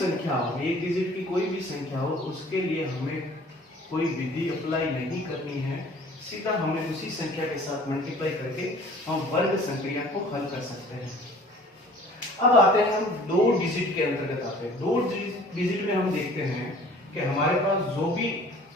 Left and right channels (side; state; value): both; normal; correlation 0.50